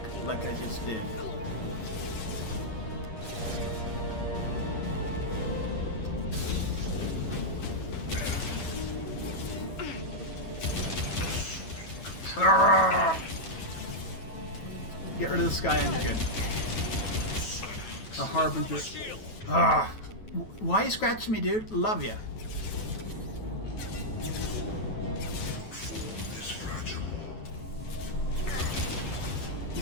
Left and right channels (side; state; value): right; late; 9.2 ms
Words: I just did. Get rid of this guy and you're good. A harbinger. Ah. Why are you scratching me, dude? Love ya.